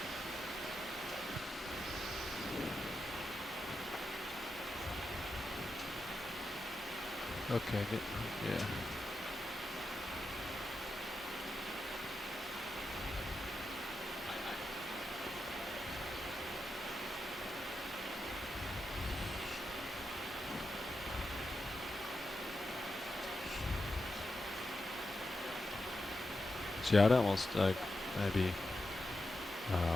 Okay, good. Yeah. See, I'd almost like maybe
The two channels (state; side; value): normal; both; correlation 0.88